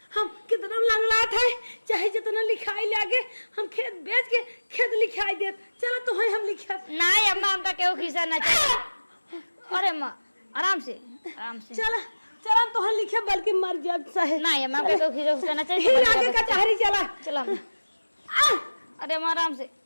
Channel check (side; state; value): both; inverted; correlation -1.00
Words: हम कितना लंगड़ा था चाहे जितना लिखाई लागे हम खेत बेच के खेत लिखाई दे चलो तो हम लिखा। नहीं अम्मा हमका केहू खिस्सा ना चाहिए। अरे अम्मा आराम से चला चला तो हम लिखे बल्कि मर जाए सहे। नहीं अम्मा हमका केहू खिस्सा ना चाहिए। फिर आगे कचहरी चला चला अरे अम्मा आराम से